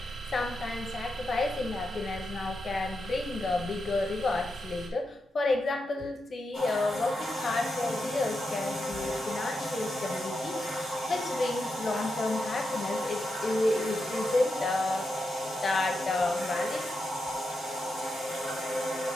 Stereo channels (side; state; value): both; normal; correlation 0.86